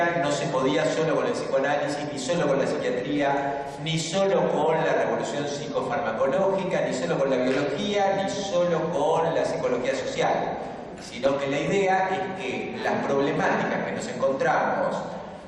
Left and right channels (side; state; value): both; identical; correlation 1.00